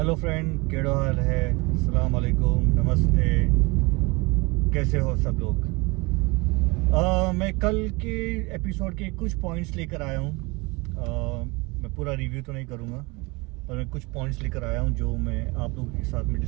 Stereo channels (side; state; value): left; quieter; 25.9 dB